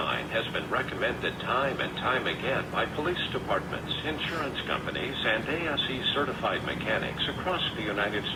has been recommended time and time again by police departments, insurance companies, and ASE-certified mechanics across the United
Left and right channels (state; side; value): identical; both; correlation 1.00